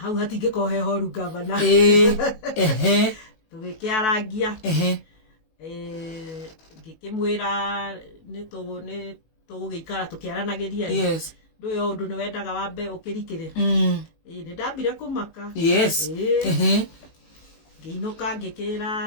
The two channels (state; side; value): late; right; 18 ms